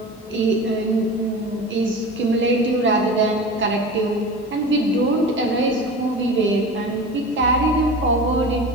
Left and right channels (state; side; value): normal; both; correlation 0.33